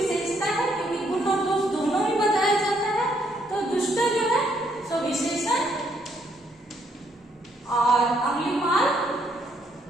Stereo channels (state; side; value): normal; both; correlation 0.71